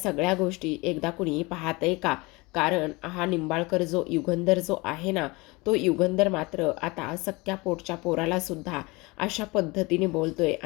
गोष्टी एकदा कुणी पाहतंय का? कारण हा निंबाळकर जो युगंधर जो आहे ना, तो युगंधर मात्र आता सख्या पोटच्या पोराला सुद्धा अशा पद्धतीने बोलतोय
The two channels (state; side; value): quieter; right; 24.6 dB